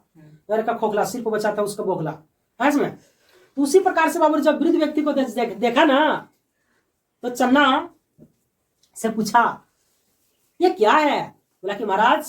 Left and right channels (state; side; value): identical; both; correlation 1.00